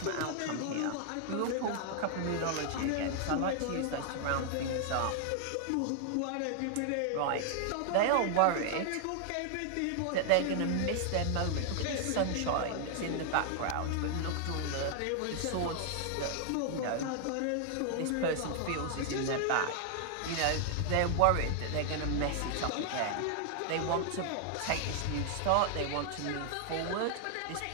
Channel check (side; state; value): both; different; correlation 0.00